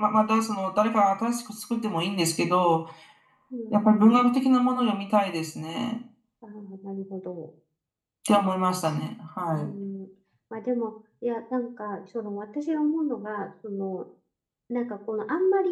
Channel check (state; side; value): identical; both; correlation 1.00